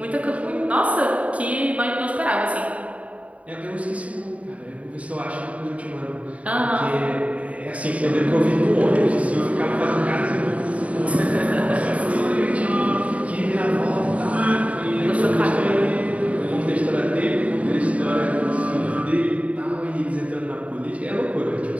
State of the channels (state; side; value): late; left; 0.066 ms